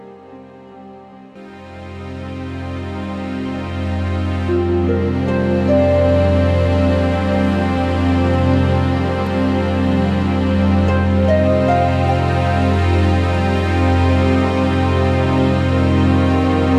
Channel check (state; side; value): identical; both; correlation 1.00